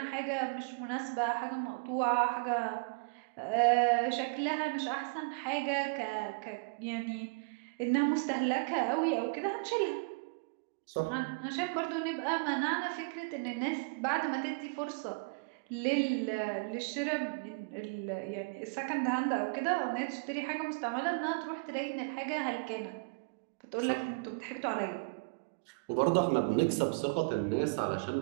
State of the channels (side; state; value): left; quieter; 33.3 dB